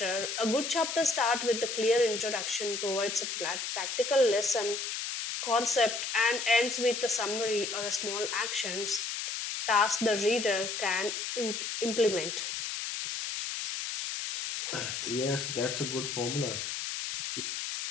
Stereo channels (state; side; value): noise; left; hiss, 3 dB below the sound